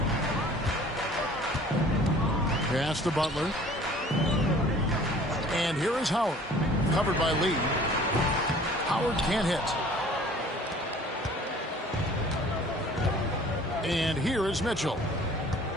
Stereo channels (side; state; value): both; normal; correlation 0.50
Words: Pass to Butler. And here is Howard. Covered by Lee. Howard can't hit. And here is Mitchell.